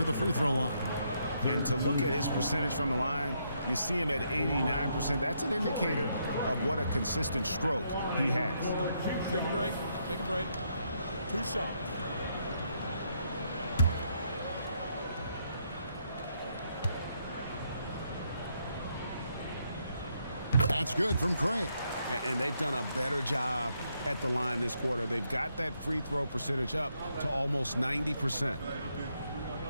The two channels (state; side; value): inverted; both; correlation -0.76